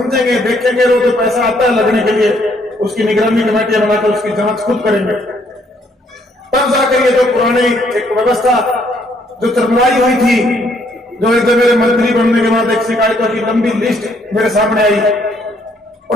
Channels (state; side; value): normal; both; correlation 0.68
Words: देखेंगे, रोज जो पैसा आता है लगने के लिए, उसकी निगरानी कमेटियां बनाकर उसकी जांच खुद करेंगे, तब जाकर ये जो पुरानी एक व्यवस्था जो चरमराई हुई थी, जो एक मेरे मंत्री बनने के बाद एक शिकायतों की लंबी लिस्ट मेरे सामने आई,